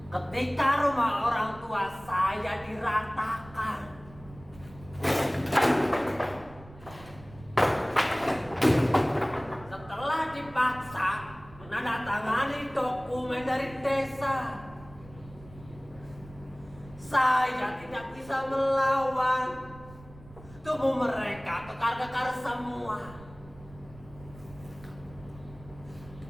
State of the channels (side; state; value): right; noise; rumble, 20 dB below the sound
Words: Ketika rumah orang tua saya diratakan, dipaksa menandatangani dokumen dari desa. Saya tidak bisa melawan. Tubuh mereka kekar-kekar semua.